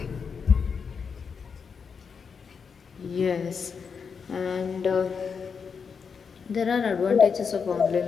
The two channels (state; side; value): quieter; right; 6.0 dB